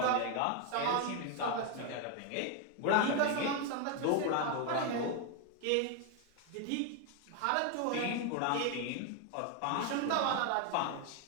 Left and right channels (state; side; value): different; both; correlation 0.01